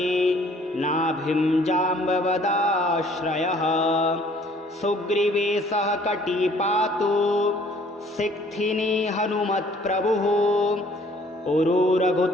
नाभिं जाम्बवदाश्रयः सुग्रीवेशः कटी पातु सिक्थिनी हनुमत्प्रभुः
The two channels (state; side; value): normal; both; correlation 0.58